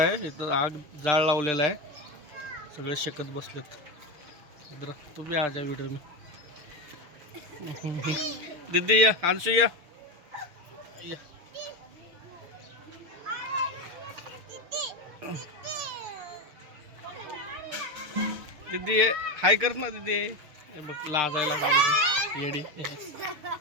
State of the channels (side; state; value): left; late; 6.6 ms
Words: इथं आग जाळ लावलेला आहे, सगळे शेकत बसलेत. इधर तू भी आ जा व्हिडिओ में. दीदी या, अंशु या. दीदी ये हाय कर ना दीदी. हे बघ लाजायला लागली येडी.